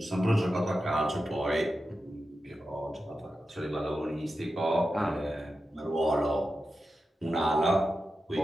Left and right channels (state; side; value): normal; both; correlation 0.91